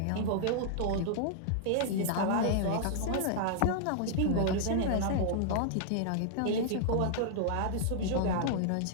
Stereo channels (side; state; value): both; different; correlation -0.01